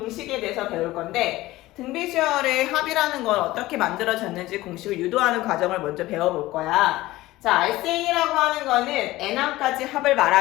대해서 배울 건데 등비수열의 합이라는 건 어떻게 만들어졌는지 공식을 유도하는 과정을 먼저 배워볼 거야. 자, RCN이라고 하는 거는 n항까지 합을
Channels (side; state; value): right; quieter; 17.7 dB